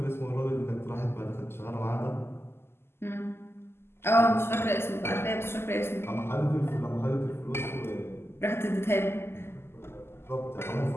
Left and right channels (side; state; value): right; late; 0.12 ms